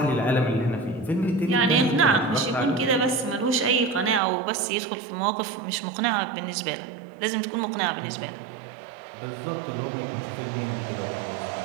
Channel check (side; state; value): left; drops out; at 4.2 s